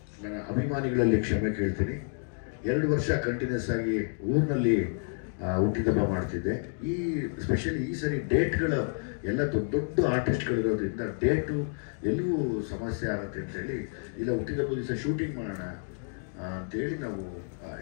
ನನ್ನ ಅಭಿಮಾನಿಗಳಲ್ಲಿ ಕ್ಷಮೆ ಕೇಳ್ತೀನಿ. 2 ವರ್ಷ ಕಂಟಿನ್ಯೂಸ್ ಆಗಿ ಊರಿನಲ್ಲಿ ಹುಟ್ಟಿದಬ್ಬ ಮಾಡ್ತಿದ್ದೆ. ಸ್ಪೆಷಲಿ ಈ ಸರಿ ಡೇಟ್ಗಳು ಎಲ್ಲ ದೊಡ್ಡ ದೊಡ್ಡ ಆರ್ಟಿಸ್ಟ್ಗಳಿರೋದ್ರಿಂದ ಡೇಟು ಎಲ್ಲವೂ ಸಮಸ್ಯೆ ಆಗುತ್ತೆ ಅಂತೇಳಿ, ಇಲ್ಲ ಹುಟ್ಟಿದಬ್ಬ ದಿವಸ ಶೂಟಿಂಗ್ ಮಾಡೋಣ ಅಂತೇಳಿ ನಾವು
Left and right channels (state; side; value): silent; right; 58 dB below the other